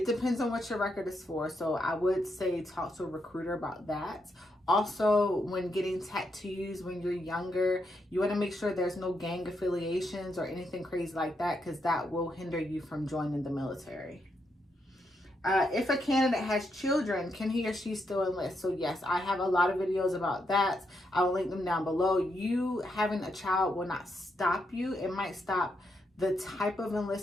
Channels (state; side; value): normal; both; correlation 0.80